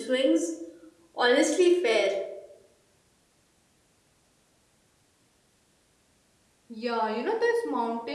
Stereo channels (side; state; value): both; identical; correlation 1.00